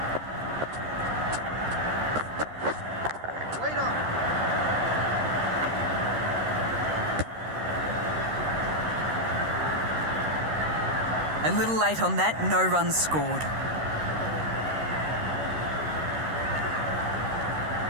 Wait on. A little late on that, no runs scored.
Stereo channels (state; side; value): late; left; 13 ms